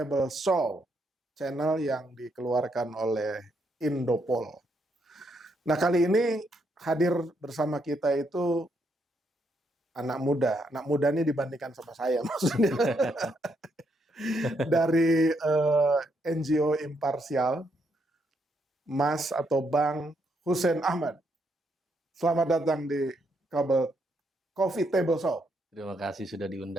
Show, channel yang dikeluarkan oleh Indopol. Nah, kali ini hadir bersama kita itu anak muda. Anak muda ini dibandingkan sama saya maksudnya. Dari NGO Imparsial, Mas atau Bang Hussein Ahmad. Selamat datang di Coffee Table Show. Terima kasih sudah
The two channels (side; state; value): both; normal; correlation 0.76